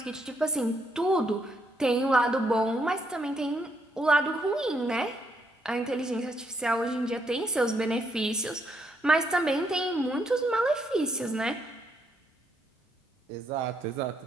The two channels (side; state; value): both; normal; correlation 0.75